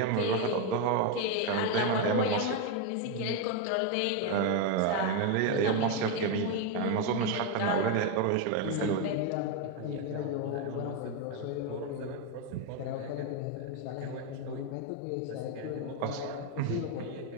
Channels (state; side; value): different; both; correlation 0.02